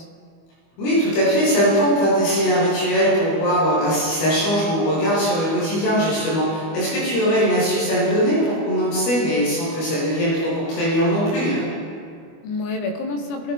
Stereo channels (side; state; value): right; late; 25 ms